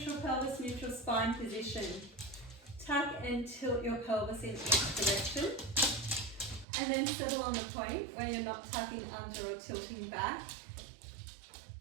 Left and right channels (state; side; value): drops out; left; at 6.7 s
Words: pelvis, neutral spine position. Tuck and tilt your pelvis in each direction. And then settle on the point where you're not tucking under or tilting back.